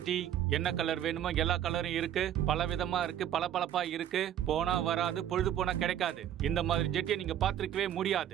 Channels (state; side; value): quieter; left; 10.9 dB